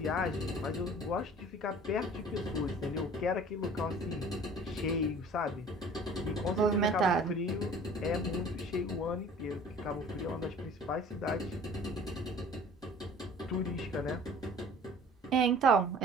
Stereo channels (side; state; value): both; normal; correlation 0.48